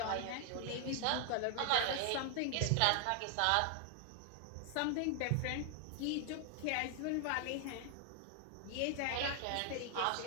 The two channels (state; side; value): different; both; correlation 0.00